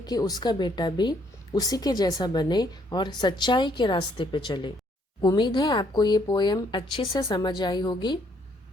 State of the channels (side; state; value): both; normal; correlation 0.68